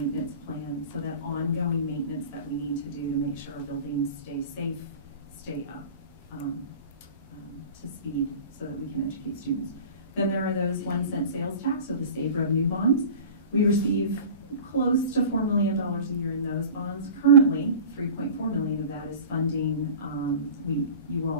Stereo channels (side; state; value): both; inverted; correlation -0.38